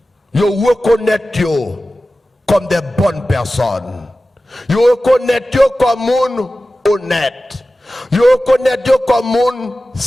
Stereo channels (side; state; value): both; normal; correlation 0.95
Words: comme des bonnes personnes. Yo reconnaître yo comme moun honnête. Yo reconnaître yo comme moun